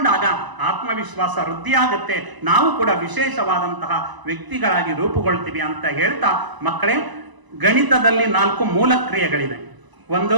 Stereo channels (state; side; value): late; left; 1.0 ms